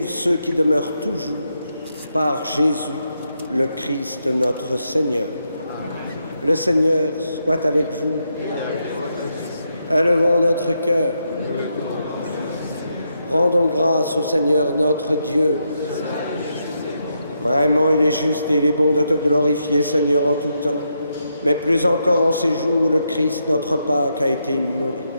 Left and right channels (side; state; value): both; inverted; correlation -0.81